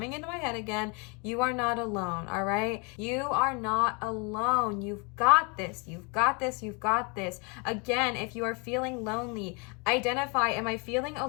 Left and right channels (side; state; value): right; quieter; 32.5 dB